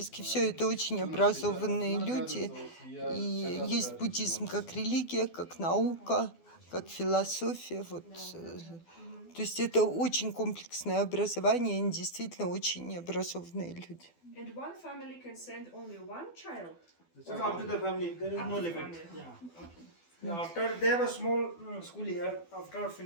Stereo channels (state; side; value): late; right; 12 ms